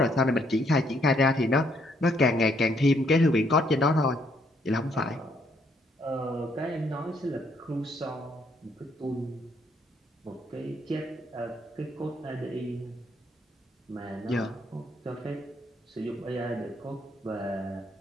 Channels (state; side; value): normal; both; correlation 0.70